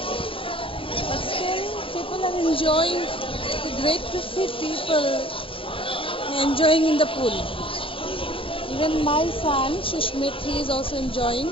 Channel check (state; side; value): late; right; 0.26 ms